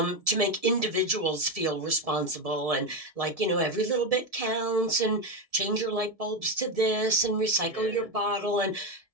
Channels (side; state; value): left; late; 1.7 ms